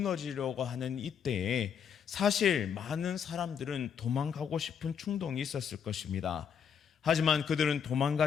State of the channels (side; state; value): right; quieter; 7.5 dB